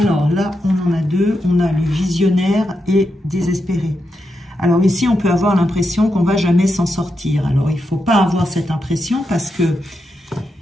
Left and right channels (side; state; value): both; normal; correlation 0.85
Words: là, on en a deux, on a le visionnaire et désespéré. Alors ici, on peut avoir l'impression qu'on ne va jamais s'en sortir. Alors il ne faut pas avoir cette impression parce que